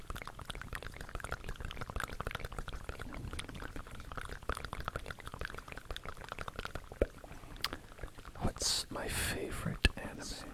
What's my favorite anime?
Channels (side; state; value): both; identical; correlation 1.00